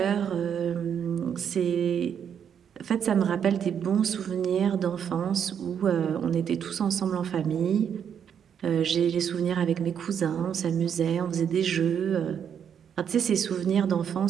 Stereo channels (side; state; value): left; quieter; 8.2 dB